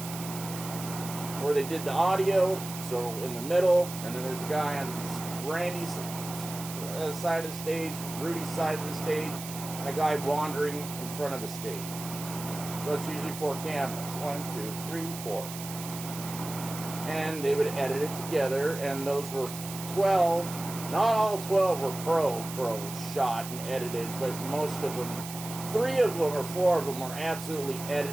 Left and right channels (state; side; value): noise; right; hiss, 10 dB below the sound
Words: where they did the audio, so in the middle, and then there's a guy on Randy's side of the stage, Rudy's side of the stage, and a guy wandering in front of the stage. So it's usually 4 cameras. 1, 2, 3, 4. And they would edit it together, and those were 12. Not all 12 were pro shot and edited, but most of them, 3 of them or 4 of them were absolutely